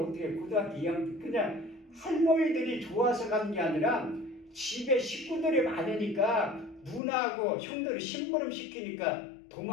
고등학교 2학년 때 그냥 할머니들이 좋아서 간 게 아니라 집에 식구들이 많으니까 누나하고 형들이 심부름 시키니까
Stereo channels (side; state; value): right; drops out; at 7.0 s